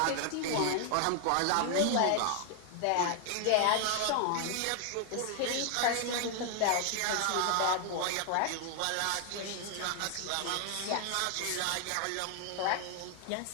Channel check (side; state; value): both; different; correlation 0.00